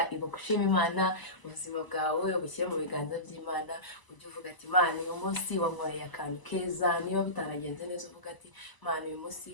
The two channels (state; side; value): late; right; 1.0 ms